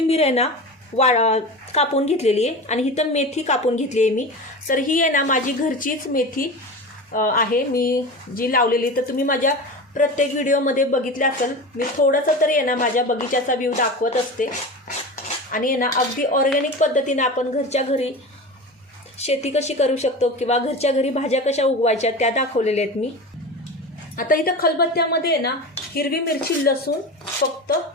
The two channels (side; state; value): both; normal; correlation 0.29